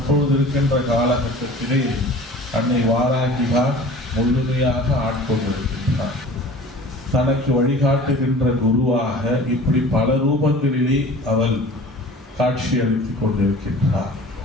இருக்கின்ற காலகட்டத்திலே அன்னை வாராகிதான் முழுமையாக ஆட்கொண்டிருக்கின்றார். தனக்கு வழிகாட்டுகின்ற குருவாக இப்படி பல ரூபங்களிலே அவள் காட்சி அளித்துக் கொண்டிருக்கின்றார்.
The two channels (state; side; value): normal; both; correlation 0.43